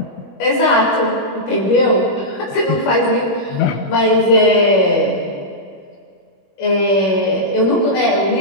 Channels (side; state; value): right; late; 21 ms